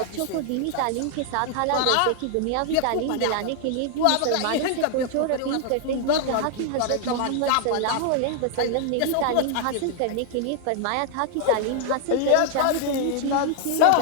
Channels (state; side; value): different; both; correlation 0.00